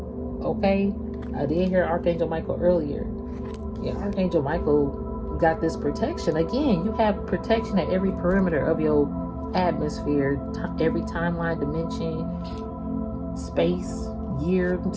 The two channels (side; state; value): both; identical; correlation 1.00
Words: Okay? I did hear Archangel Michael earlier. Yeah, Archangel Michael got this protection. Again, you have protection at every perimeter of your atmosphere, every timeline, dimension, space, year,